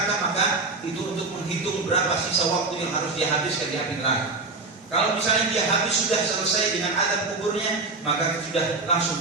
maka itu untuk menghitung berapa sisa waktu yang harus dia habiskan di api neraka. Kalau misalnya dia habis sudah selesai dengan adab kuburnya, maka sudah langsung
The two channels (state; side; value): quieter; left; 3.7 dB